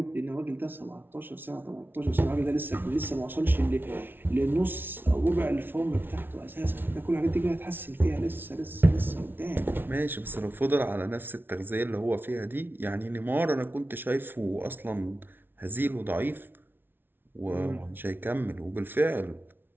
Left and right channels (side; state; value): left; late; 0.10 ms